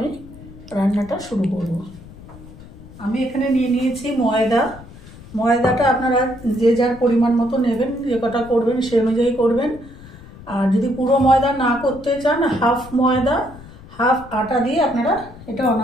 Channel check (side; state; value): left; noise; rumble, 18 dB below the sound